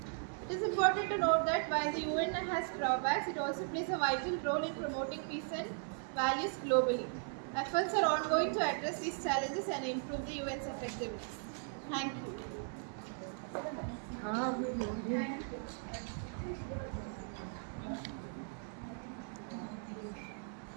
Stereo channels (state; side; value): silent; left; 53 dB below the other